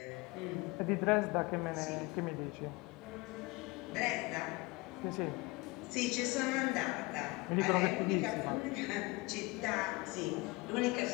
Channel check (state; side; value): quieter; right; 24.4 dB